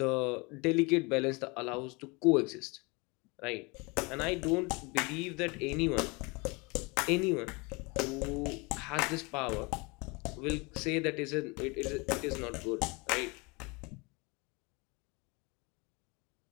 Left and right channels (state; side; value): quieter; right; 27.8 dB